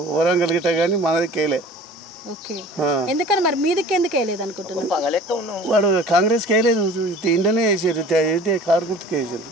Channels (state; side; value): normal; both; correlation 0.45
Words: వరంగల్ గిట్ట కానీ మనది కేలే. ఓకే, ఎందుకని మరి మీదికి ఎందుకు వేయలేదు అనుకుంటున్నాను? వాడు కాంగ్రెస్ కేలేదు, ఇండియనే వేసారు, కారు గుర్తుకు వేసారు